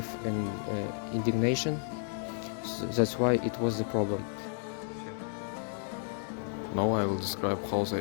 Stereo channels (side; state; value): right; silent; 56 dB below the other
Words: and indignation. So that's why it was the problem. Now I will describe how the